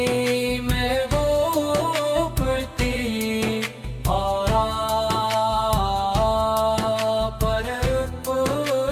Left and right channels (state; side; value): identical; both; correlation 1.00